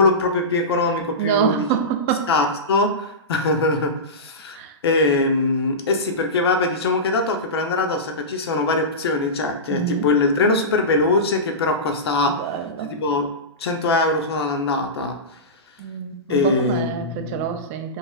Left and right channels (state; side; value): normal; both; correlation -0.18